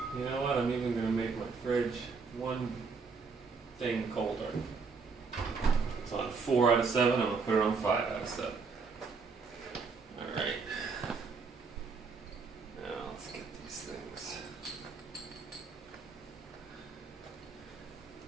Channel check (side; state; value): left; quieter; 4.9 dB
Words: You know what? I'm even going to make my fridge one thing colder. It's on 4 out of 7. I'm going to put it on 5 out of 7. Alright. Now let's get these things.